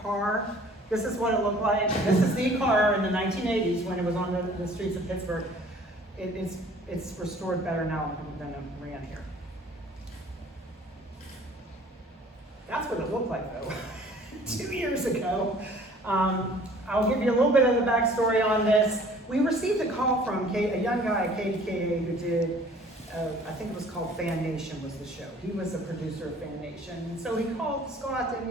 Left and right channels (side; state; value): both; normal; correlation 0.52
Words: car, this is what it looked like. This is the car in the 1980s when it was on the streets of Pittsburgh. It's restored better now than it ran here. That's what it looked like though, 2 years ago. I'll give you a little bit of the backstory on this. We received a call from a young guy at KDKA who did, I think it was called Fan Nation was the show. He was a producer of Fan Nation. And so he called Scott and